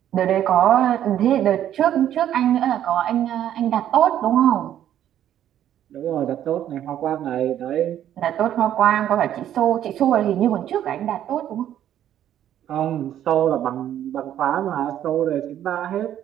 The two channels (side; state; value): left; quieter; 11.1 dB